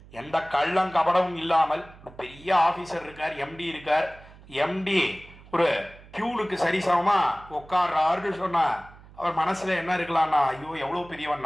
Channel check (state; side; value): noise; right; hum, 21 dB below the sound